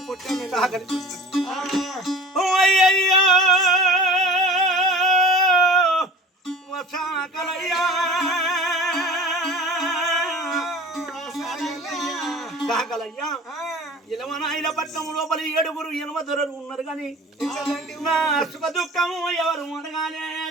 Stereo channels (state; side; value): normal; both; correlation 0.40